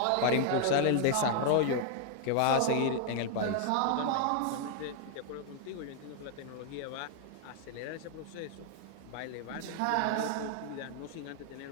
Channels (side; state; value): both; different; correlation 0.00